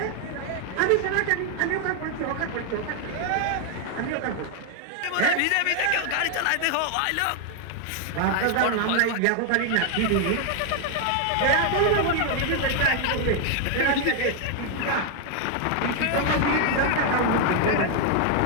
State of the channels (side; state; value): both; different; correlation 0.00